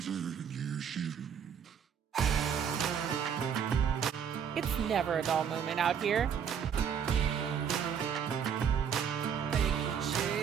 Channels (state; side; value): quieter; left; 7.8 dB